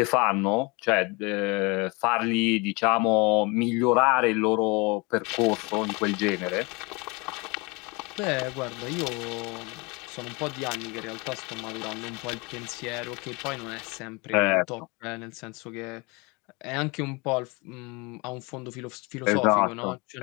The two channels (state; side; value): quieter; right; 27.6 dB